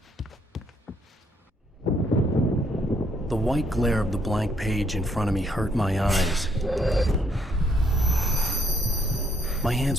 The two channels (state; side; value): normal; both; correlation 0.70